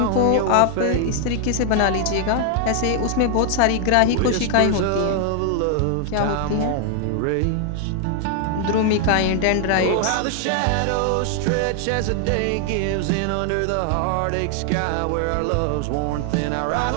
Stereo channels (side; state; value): both; different; correlation 0.00